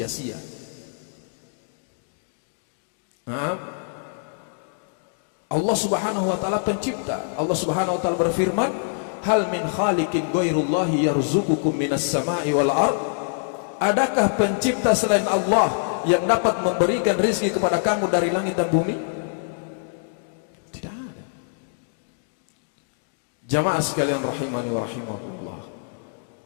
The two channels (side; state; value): right; silent; digital silence